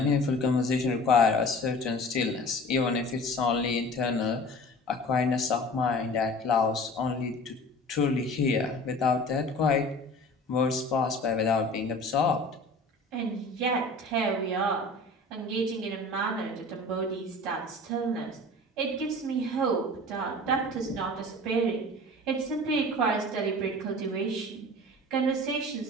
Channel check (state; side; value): normal; both; correlation 0.42